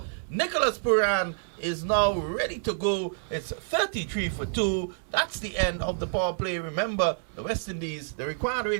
Nicholas Puran is now ready to go. It's 33 for 2. That's the end of the power play. Remember, the West Indies, the required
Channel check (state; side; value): silent; left; digital silence